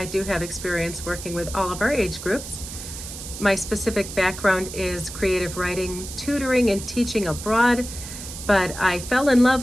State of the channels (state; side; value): noise; right; hiss, 10 dB below the sound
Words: do have experience working with all of our age groups. My specific background is creative writing, tutoring, and teaching abroad, but I fell in love